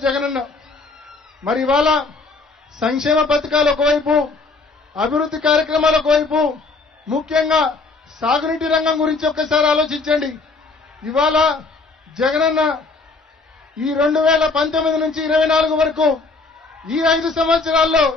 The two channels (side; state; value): right; quieter; 3.9 dB